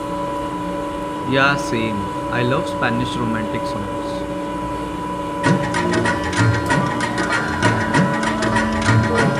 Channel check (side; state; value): both; identical; correlation 1.00